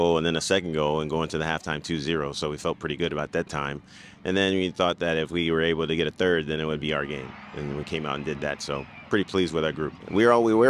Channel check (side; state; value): both; identical; correlation 1.00